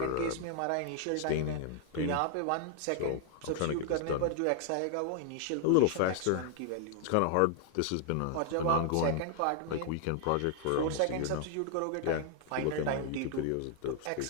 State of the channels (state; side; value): different; both; correlation 0.00